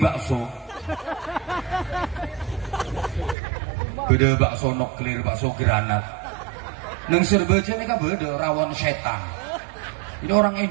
Beda bakso nuklir, bakso granat. Neng Serbaja ini kan beda rawon setan. Ini orang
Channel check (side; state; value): left; drops out; at 3.4 s